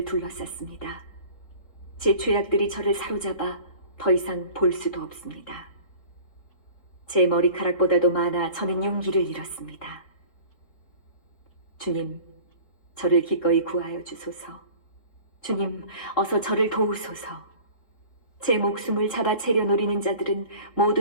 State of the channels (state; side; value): late; right; 3.7 ms